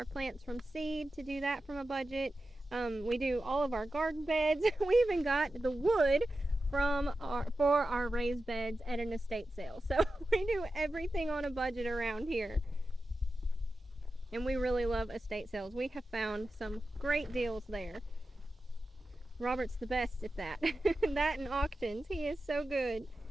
plants from seed to do that from a budget. We do all of our garden beds. We even got the wood for our raised beds at an estate sale. So we do everything on a budget around here. And we really love estate sales. We have found some great deals there. Robert's the best at that. That and auctions. He is so good.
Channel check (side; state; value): both; normal; correlation 0.92